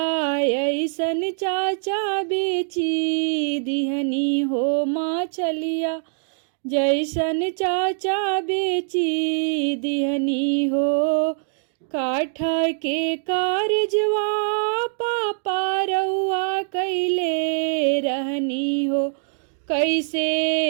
ऐसन चाचा बेची दिहनी हो, मछलिया जैसन चाचा बेची दिहनी हो। काठ के कारजवा पापा रउआ कैले रहनी हो,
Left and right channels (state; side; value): silent; left; digital silence